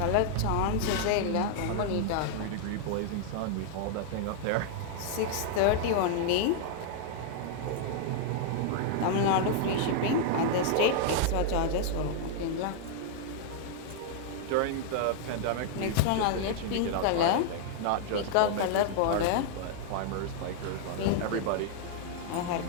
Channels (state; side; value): different; both; correlation 0.00